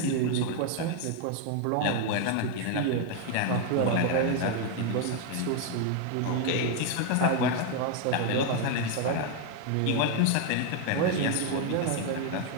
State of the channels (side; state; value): both; different; correlation 0.01